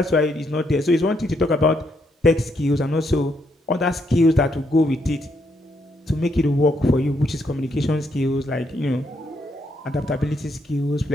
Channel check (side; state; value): both; normal; correlation 0.76